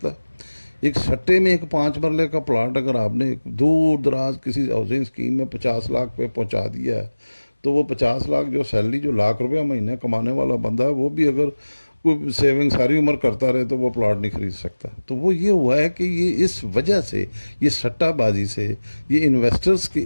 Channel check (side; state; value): both; inverted; correlation -1.00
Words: ایک سٹے میں ایک 5 مرلے کا پلاٹ اگر آپ نے دور دراز کسی ہاؤسنگ اسکیم میں 50 لاکھ پہ پہنچا دیا ہے، تو وہ 50 لاکھ جو سیلری جو لاکھ 1,00,000 مہینے کمانے والا بندہ ہے، وہ بھی اگر کوئی سیونگ ساری عمر کرتا رہے تو وہ پلاٹ نہیں خرید سکتا. تو وہ یہ ہوا ہے کہ یہ اس وجہ سے، یہ سٹہ بازی سے، یہ انویسٹرز کے